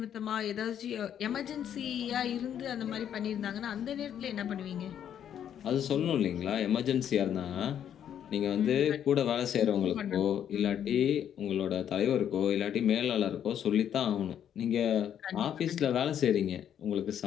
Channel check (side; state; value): right; quieter; 9.5 dB